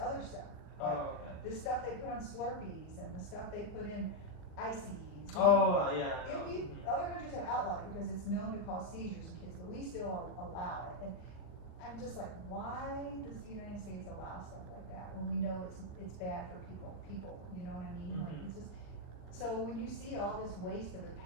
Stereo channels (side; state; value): right; late; 39 ms